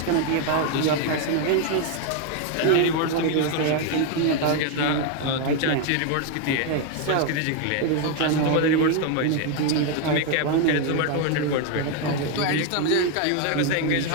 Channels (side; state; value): both; different; correlation 0.01